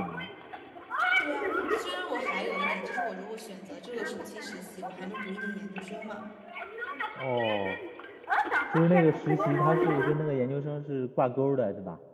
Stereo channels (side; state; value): both; identical; correlation 1.00